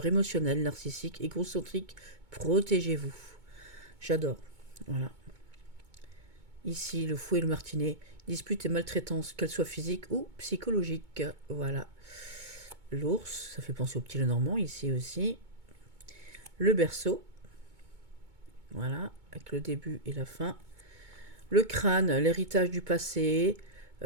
émotionnel, narcissique, égocentrique, protégez-vous. J'adore, voilà. Ici, le fouet et le martinet, dispute et maltraitance, qu'elle soit physique ou psychologique. Voilà. L'ours, ça fait penser au petit Lenormand, ici aussi. Le berceau, voilà, avec le début et la fin. Le crâne, l'héritage du passé,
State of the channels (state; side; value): late; left; 2.2 ms